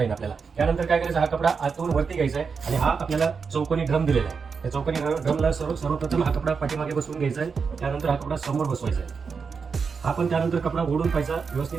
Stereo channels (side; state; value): left; quieter; 5.5 dB